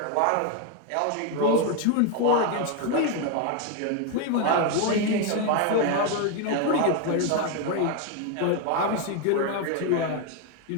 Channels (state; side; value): different; both; correlation 0.01